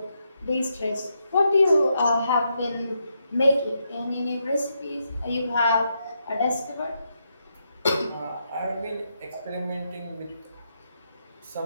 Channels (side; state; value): both; inverted; correlation -0.81